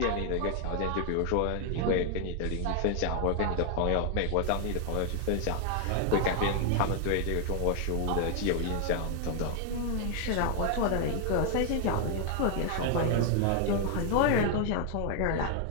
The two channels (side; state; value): both; different; correlation 0.00